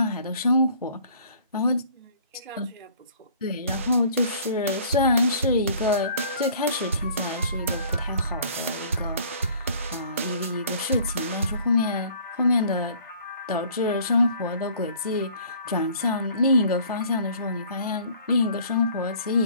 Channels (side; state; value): both; inverted; correlation -0.53